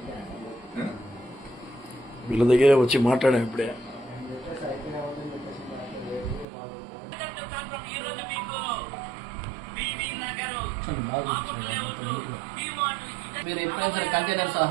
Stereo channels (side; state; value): left; drops out; at 6.5 s